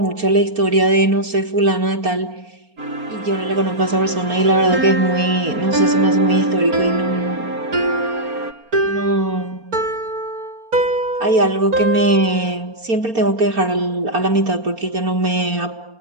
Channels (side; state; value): left; late; 4.3 ms